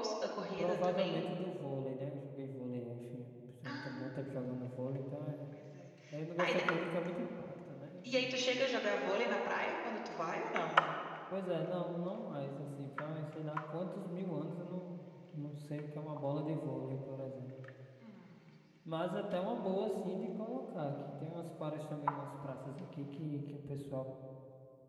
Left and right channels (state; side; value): identical; both; correlation 1.00